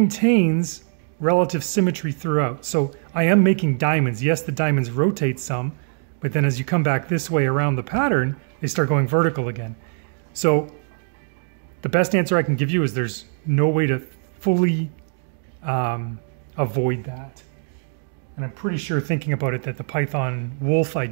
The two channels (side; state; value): left; silent; digital silence